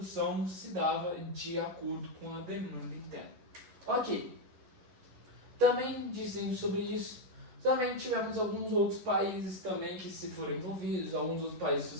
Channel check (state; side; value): late; left; 11 ms